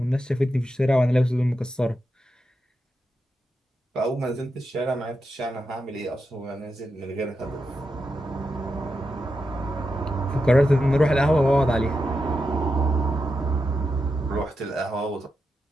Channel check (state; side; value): normal; both; correlation 0.87